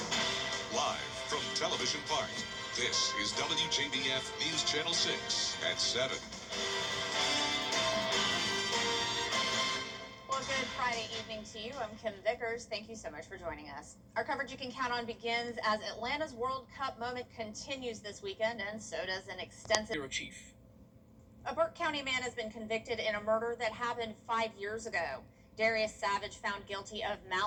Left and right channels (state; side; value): identical; both; correlation 1.00